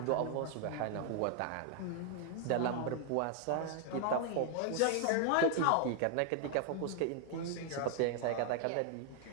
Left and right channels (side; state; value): both; different; correlation 0.00